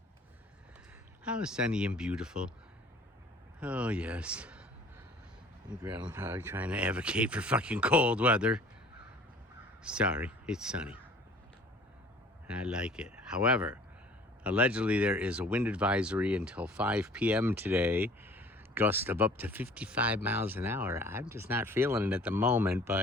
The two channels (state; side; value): normal; both; correlation 0.50